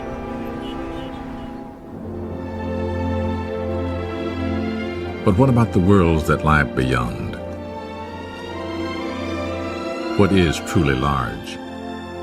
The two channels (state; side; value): identical; both; correlation 1.00